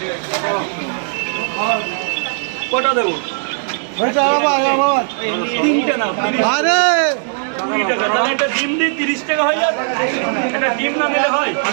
কটা দেবো তিনটে না 20 টাকা তাহলে একটা ডিম দিই 30 টাকা হয়ে যাবে একটা ডিম না দিলে হয়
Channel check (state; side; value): silent; left; digital silence